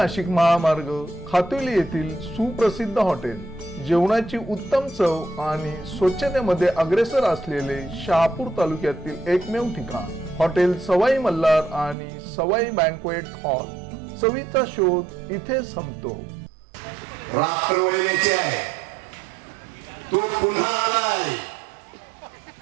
महामार्ग खातुली येथील सुप्रसिद्ध हॉटेल जेवणाची उत्तम चव आणि स्वच्छतेमध्ये अग्रेसर असलेले शहापूर तालुक्यातील एकमेव ठिकाण हॉटेल सवाई मल्हार आणि सवाई बँक्वेट हॉल चवीचा शोध इथे संपतो। रात्र वैऱ्याची आहे तो पुन्हा आलाय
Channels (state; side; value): drops out; left; at 12.0 s